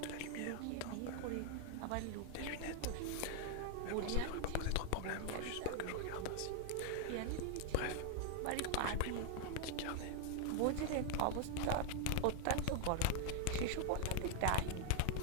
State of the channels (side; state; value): both; different; correlation 0.00